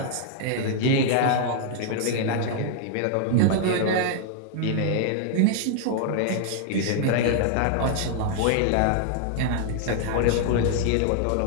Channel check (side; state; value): both; different; correlation 0.00